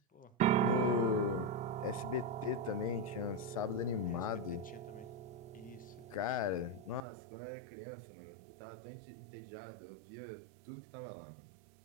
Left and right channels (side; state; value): left; drops out; at 7.0 s